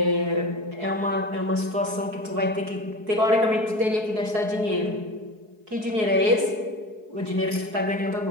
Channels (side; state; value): left; late; 4.7 ms